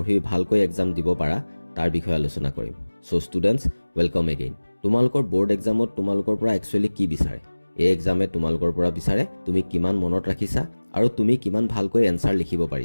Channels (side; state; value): both; inverted; correlation -1.00